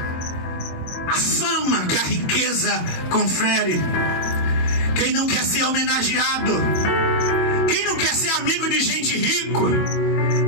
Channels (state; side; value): late; right; 22 ms